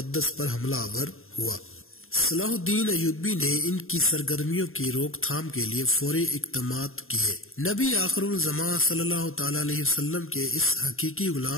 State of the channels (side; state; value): right; late; 0.61 ms